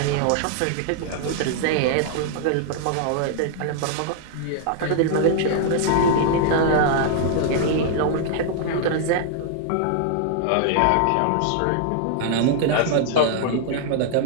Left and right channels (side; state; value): both; different; correlation -0.01